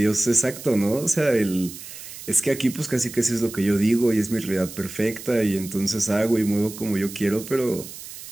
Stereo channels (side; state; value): right; noise; hiss, 13 dB below the sound